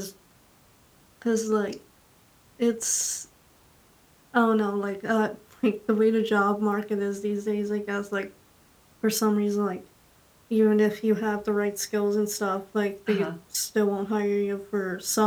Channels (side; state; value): both; identical; correlation 1.00